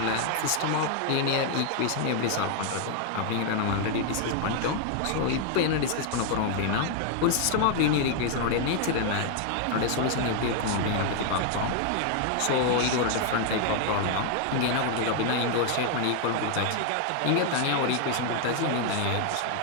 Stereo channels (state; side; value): different; both; correlation 0.00